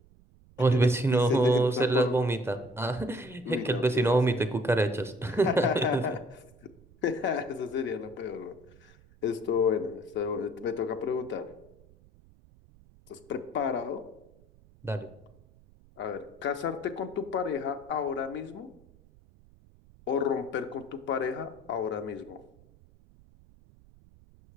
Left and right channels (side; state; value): right; noise; rumble, 26 dB below the sound